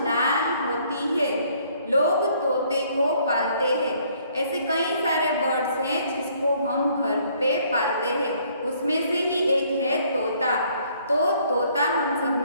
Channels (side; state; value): both; inverted; correlation -0.63